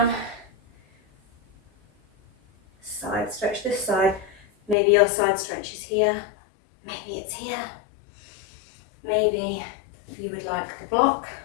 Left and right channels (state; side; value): drops out; right; at 4.8 s